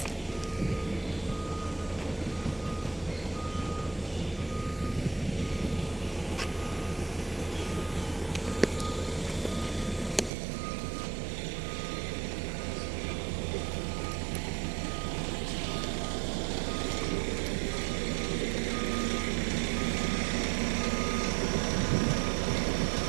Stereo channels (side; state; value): left; drops out; at 10.3 s